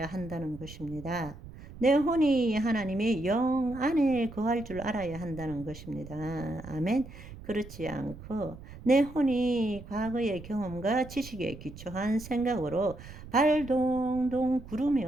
한다는 것입니다. 내 혼이 하나님의 영 안에 거할 줄 알아야 한다는 것입니다. 아멘. 그렇지 않고 내 혼이 과거의 경험과 지식에 기초한 생각으로 발동동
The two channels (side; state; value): right; noise; rumble, 15 dB below the sound